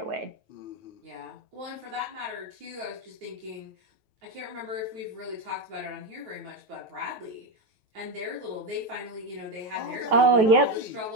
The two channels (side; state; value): left; late; 9.3 ms